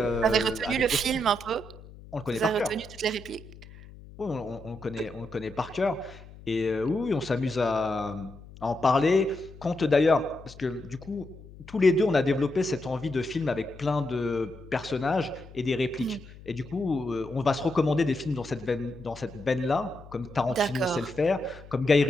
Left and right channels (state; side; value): noise; left; hum, 18 dB below the sound